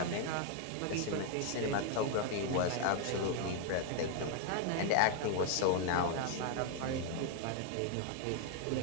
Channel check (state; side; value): different; both; correlation 0.00